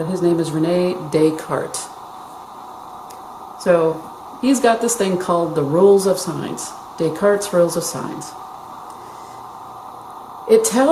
his name is René Descartes. So he's got this thing called the rules of signs, Descartes' rules of signs. It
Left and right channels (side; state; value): both; identical; correlation 1.00